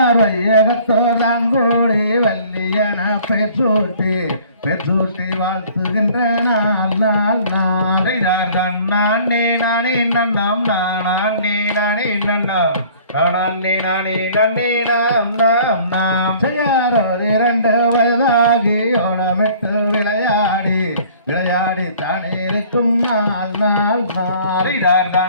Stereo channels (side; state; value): both; inverted; correlation -0.52